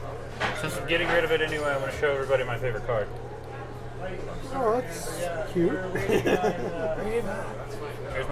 Since I'm getting rid of it anyway, I'm going to show everybody my favorite card. Oh, that's cute. Here's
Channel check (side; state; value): both; identical; correlation 1.00